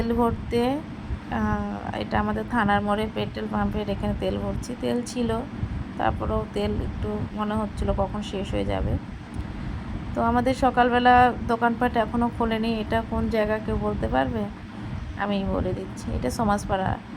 ভরতে। এটা আমাদের থানার মোড়ে পেট্রোল পাম্পের এখানে তেল ভরছি। তেল ছিল, তারপরেও তেল একটু মনে হচ্ছিল কখন শেষ হয়ে যাবে। তো আমাদের সকালবেলা দোকানপাট এখনও খোলেনি। এটা কোন জায়গা কেউ বলতে পারবে? আমি বলে দিচ্ছি, এটা সমাজপাড়া।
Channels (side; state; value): both; identical; correlation 1.00